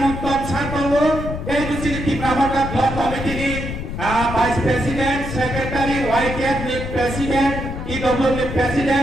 Satowo, City Pramota Block Committee, Vice President, Secretary, White Cabinet President, EW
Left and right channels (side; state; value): left; noise; rumble, 6 dB below the sound